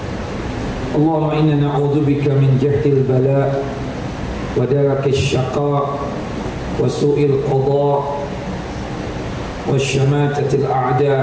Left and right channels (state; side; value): identical; both; correlation 1.00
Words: اللهم إنا نعوذ بك من جهد البلاء ودرك الشقاء وسوء القضاء والشماتة